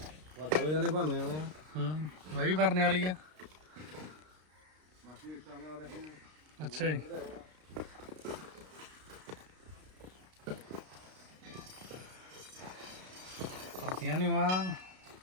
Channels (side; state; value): left; late; 32 ms